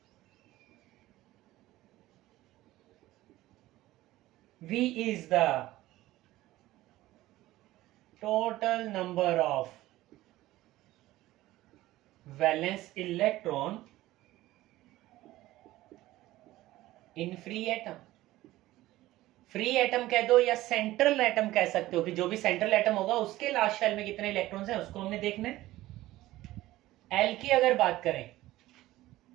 V is the total number of valence electron in free atom. Free atom कह दो या सेंट्रल एटम कह सकते हो कि जो भी सेंट्रल एटम होगा उसके लास्ट शेल में कितने इलेक्ट्रॉन्स हैं उसको हमने देखना है। एल की अगर बात करें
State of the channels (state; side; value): quieter; left; 16.5 dB